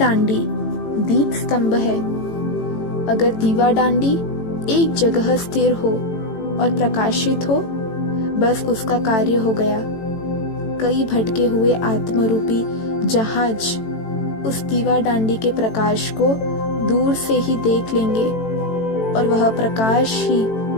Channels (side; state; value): right; late; 18 ms